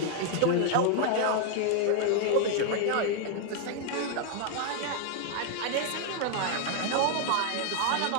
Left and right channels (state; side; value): different; both; correlation 0.00